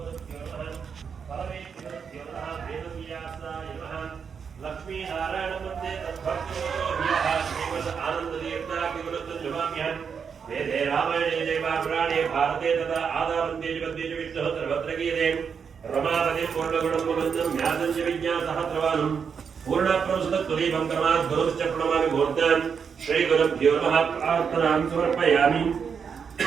भारते तथा आदावन्ते जगद्देश विष्णुः सर्वत्र गीयते रमापतिं पूर्णगुणं मुकुन्दं ज्ञातं च विज्ञासहस्रवानं पूर्णप्रवसतत्वदीपं कर्मात् गुरुश्च प्रणमामि मूर्तान् श्रीगुरुभ्यो नमः प्रार्थनां समर्पयामि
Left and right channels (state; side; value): quieter; left; 6.5 dB